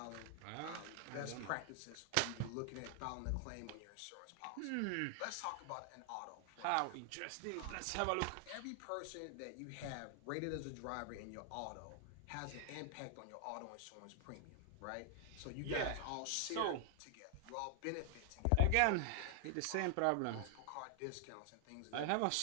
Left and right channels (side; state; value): both; different; correlation 0.00